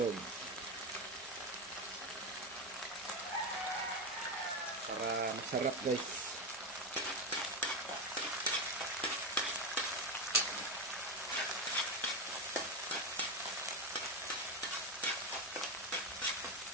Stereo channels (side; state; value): both; normal; correlation 0.13